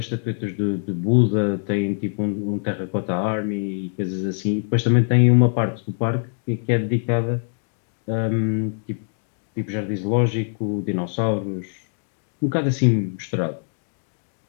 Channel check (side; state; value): right; silent; digital silence